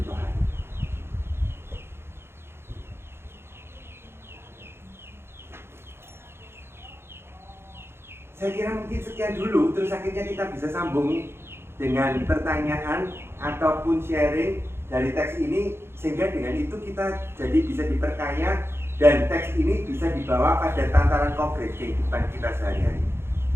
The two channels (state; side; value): late; left; 0.12 ms